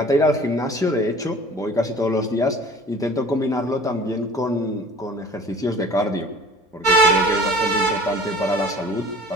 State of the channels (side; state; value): both; normal; correlation 0.46